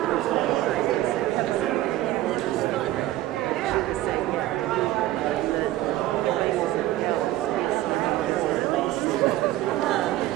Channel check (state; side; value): quieter; left; 15.4 dB